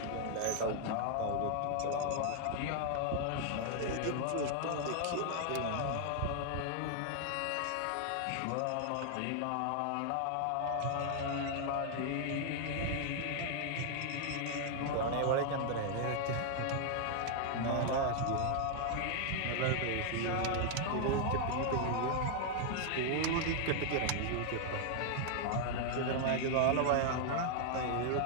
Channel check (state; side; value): different; both; correlation 0.00